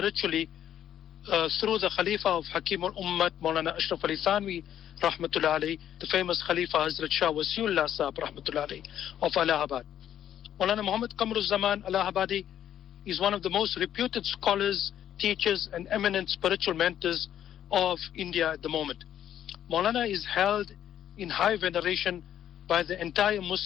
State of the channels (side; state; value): right; quieter; 10.6 dB